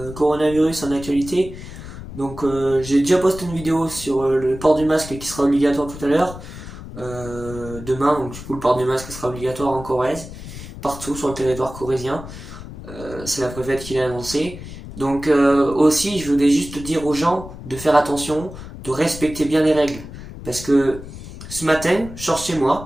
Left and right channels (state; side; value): noise; left; rumble, 13 dB below the sound